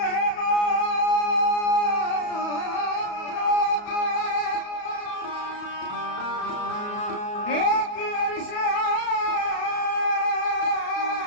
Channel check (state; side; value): late; right; 34 ms